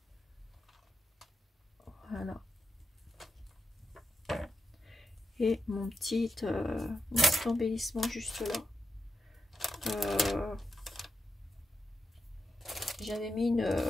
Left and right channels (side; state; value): both; normal; correlation 0.87